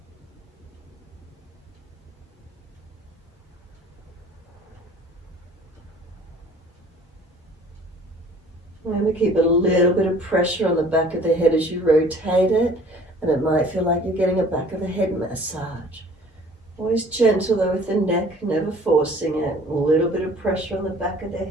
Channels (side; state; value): both; normal; correlation 0.51